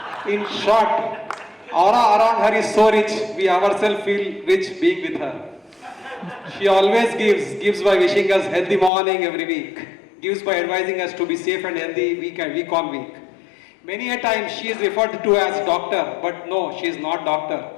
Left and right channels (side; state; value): right; drops out; at 8.9 s